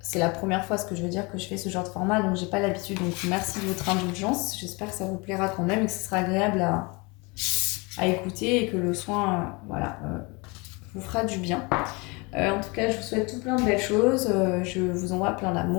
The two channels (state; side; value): quieter; right; 27.7 dB